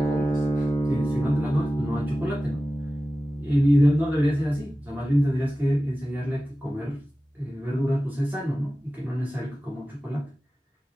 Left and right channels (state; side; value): normal; both; correlation 0.96